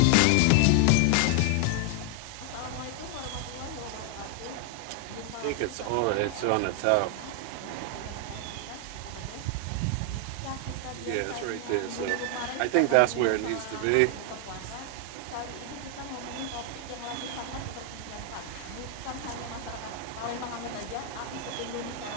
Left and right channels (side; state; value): both; different; correlation 0.00